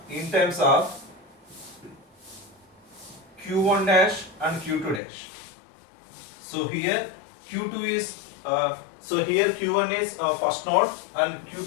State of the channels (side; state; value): right; drops out; at 5.0 s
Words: in terms of Q1 dash and Q2 dash. So here Q2 is so here Q1 is first node and